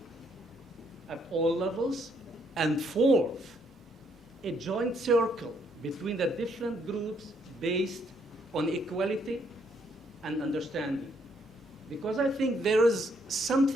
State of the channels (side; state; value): both; normal; correlation 0.70